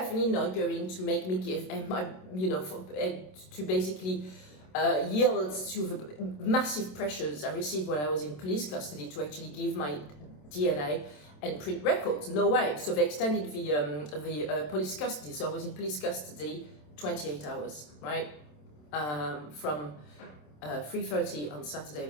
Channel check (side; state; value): right; late; 27 ms